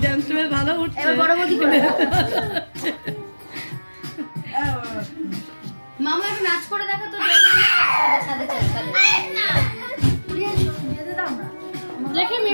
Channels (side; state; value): both; inverted; correlation -1.00